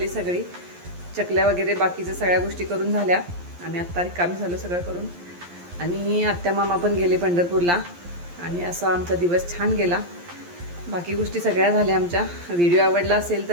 सगळी. चकल्या वगैरे बाकीच्या सगळ्या गोष्टी करून झाल्या. आम्ही आत्ता रिकामी झालो सगळं करून. आणि आत्या मामा पण गेले पंढरपूरला. आणि असा आमचा दिवस छान गेला. बाकी गोष्टी सगळ्या झाल्या आमच्या. व्हिडिओ आवडला असेल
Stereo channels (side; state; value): left; late; 11 ms